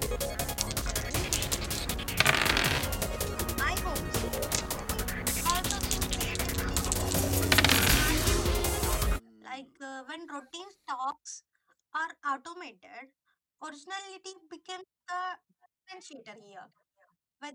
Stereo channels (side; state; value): both; identical; correlation 1.00